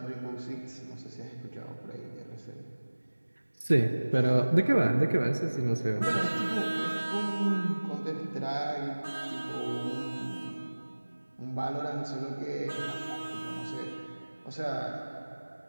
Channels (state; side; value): inverted; both; correlation -1.00